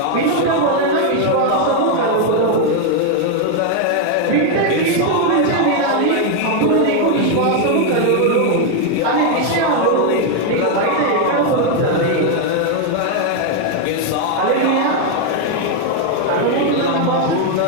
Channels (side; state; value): both; different; correlation 0.01